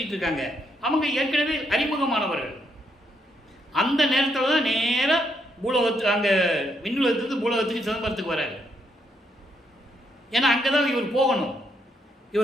இருக்காங்க. அவங்க ஏற்கனவே அறிமுகமானவர்கள். அந்த நேரத்தில் தான் நேராக பூலோகத்துக்கு, அங்கே விண்ணுலகத்துக்கு பூலோகத்துக்கு சிதம்பரத்துக்கு வராரு. ஏன்னா அங்கே தான் இவர் போகணும்.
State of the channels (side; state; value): both; normal; correlation 0.76